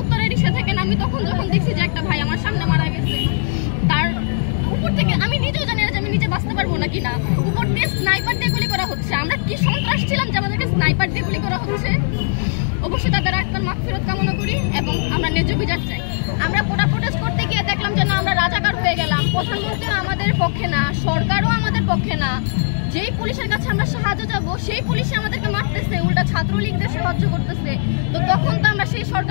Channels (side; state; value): right; silent; digital silence